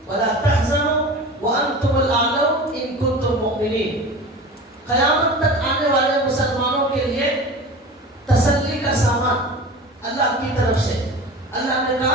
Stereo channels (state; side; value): normal; both; correlation 0.34